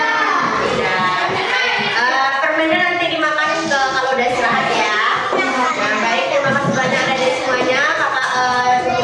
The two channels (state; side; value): identical; both; correlation 1.00